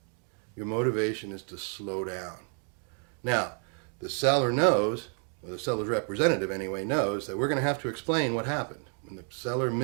Your motivation is to slow down. Now, the seller knows, or the seller's representative anyway, knows that we're going to have to explain what happened. When the seller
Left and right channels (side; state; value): left; quieter; 38.5 dB